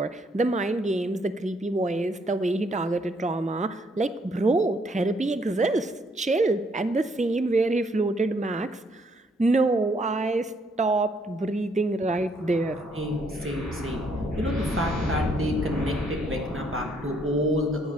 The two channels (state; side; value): normal; both; correlation 0.69